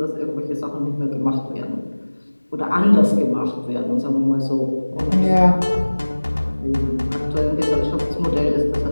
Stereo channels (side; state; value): both; inverted; correlation -1.00